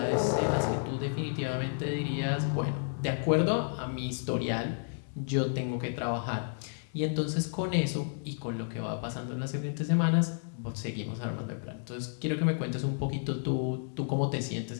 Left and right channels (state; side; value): silent; right; digital silence